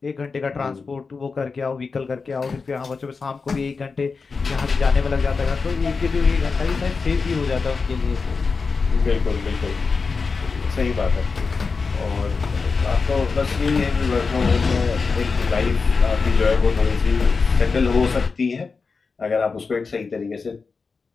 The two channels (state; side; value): quieter; right; 4.7 dB